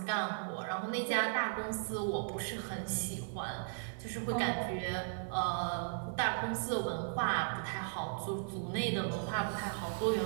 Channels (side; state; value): left; silent; digital silence